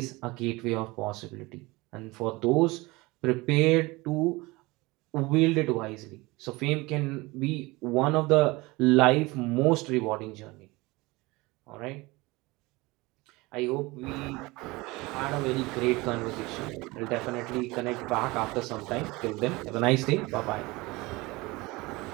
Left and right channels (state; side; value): quieter; left; 22.6 dB